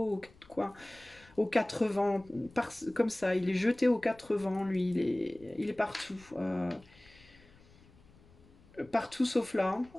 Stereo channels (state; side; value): noise; left; rumble, 26 dB below the sound